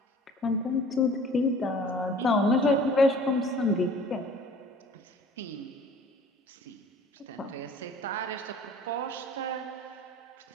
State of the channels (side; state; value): both; normal; correlation 0.49